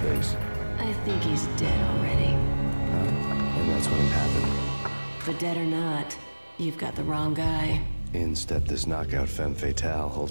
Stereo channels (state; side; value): inverted; both; correlation -1.00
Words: I think he's dead already. And that's when it happened. But dead or not, you've got the wrong guy. In stepped this knockout femme fatale